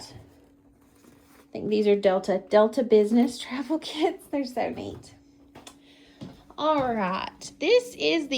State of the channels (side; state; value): both; identical; correlation 1.00